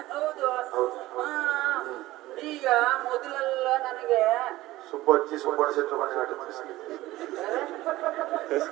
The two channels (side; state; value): left; quieter; 17.3 dB